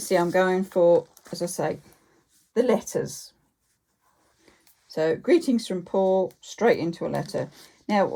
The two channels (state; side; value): identical; both; correlation 1.00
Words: I'm going for, as I say, the letters. So, greetings from Paul, straight into a letter. Now,